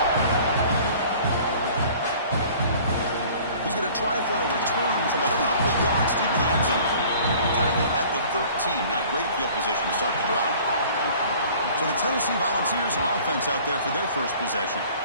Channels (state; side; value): inverted; both; correlation -0.49